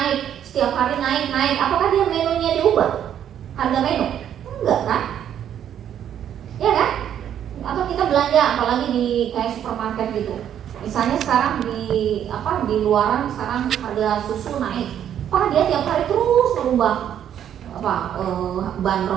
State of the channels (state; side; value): quieter; left; 9.8 dB